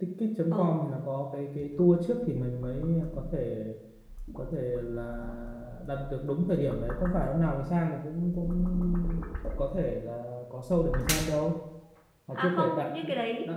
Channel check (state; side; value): identical; both; correlation 1.00